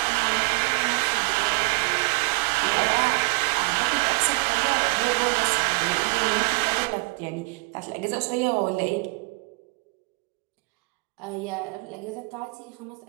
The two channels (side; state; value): left; quieter; 30.0 dB